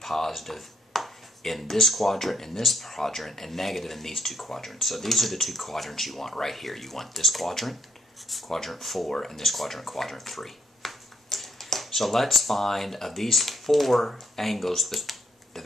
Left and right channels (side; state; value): both; normal; correlation 0.72